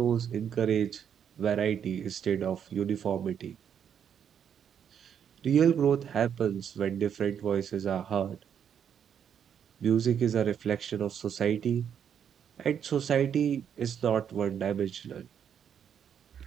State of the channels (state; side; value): quieter; left; 8.4 dB